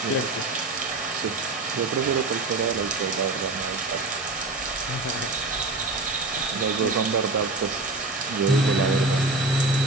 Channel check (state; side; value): quieter; left; 3.0 dB